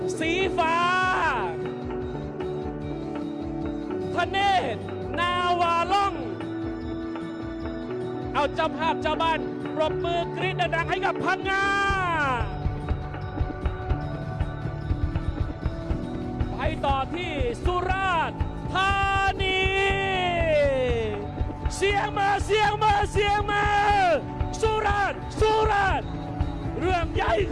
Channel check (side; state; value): both; identical; correlation 1.00